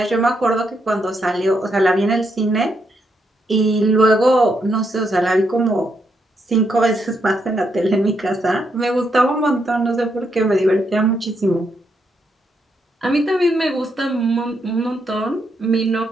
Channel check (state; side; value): normal; both; correlation 0.79